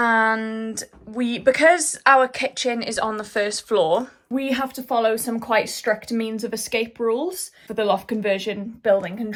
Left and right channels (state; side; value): identical; both; correlation 1.00